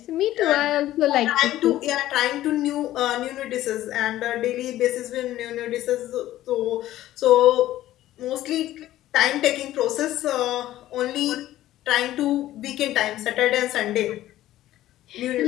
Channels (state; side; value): quieter; right; 14.3 dB